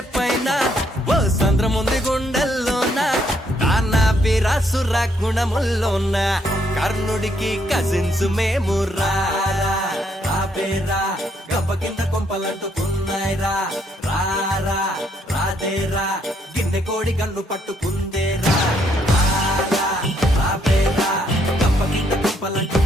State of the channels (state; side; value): normal; both; correlation 0.72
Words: పైన ఓ సంద్రముంది గుండెల్లోన వీరాసుర గుణముల్లోన కర్ణుడికి కజిన్స్ మేము రారా గబ్బ కింద కొంపలంటుకున్నాయిరా రారా రాదేరా గిన్నె కోడి కన్ను పట్టుకుందేరా రాబేరా గబ్బ కింద